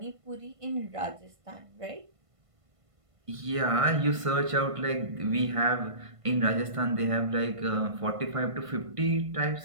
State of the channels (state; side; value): late; left; 1.5 ms